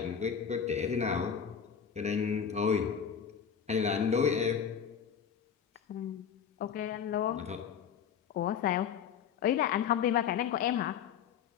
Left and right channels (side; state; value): right; quieter; 7.7 dB